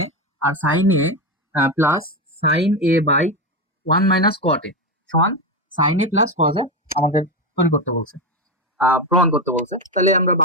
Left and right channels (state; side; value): normal; both; correlation 0.13